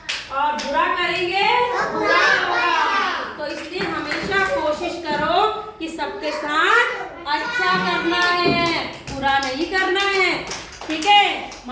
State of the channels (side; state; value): both; identical; correlation 1.00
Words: और बुरा करेंगे तो बुरा होगा। तो इसलिए हमेशा कोशिश करो कि सबके साथ अच्छा करना है, बुरा नहीं करना है। ठीक है,